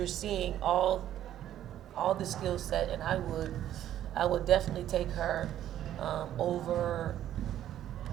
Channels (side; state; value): left; quieter; 11.7 dB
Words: seeing all the skill set, and I would definitely take her over